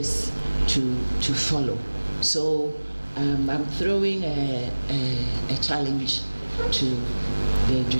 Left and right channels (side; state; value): both; inverted; correlation -1.00